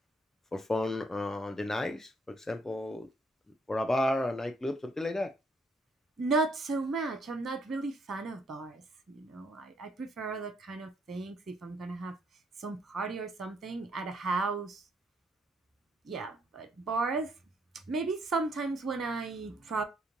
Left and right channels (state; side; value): normal; both; correlation 0.69